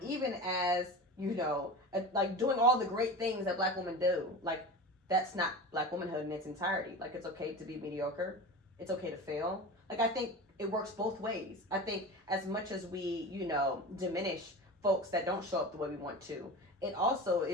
Even as, you know, like doing all the great things that Black women do. Like, that's not Black womanhood in its entirety. Like, it's okay to be mediocre. It's okay to fail. Like, I think it works both ways. I think as much as we, you know, diminish folks that don't show up the way we want to, it also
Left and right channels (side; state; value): both; normal; correlation 0.31